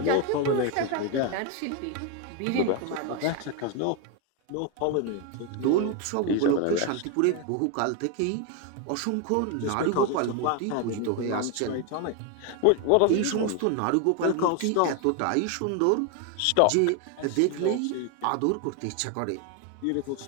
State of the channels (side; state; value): both; different; correlation 0.01